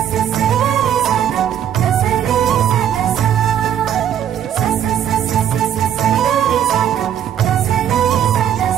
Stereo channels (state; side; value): quieter; left; 9.8 dB